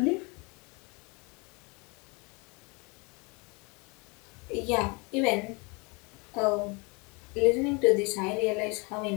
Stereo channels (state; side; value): quieter; right; 29.5 dB